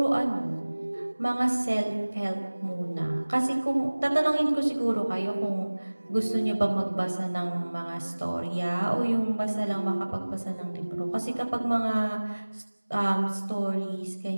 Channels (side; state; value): both; inverted; correlation -1.00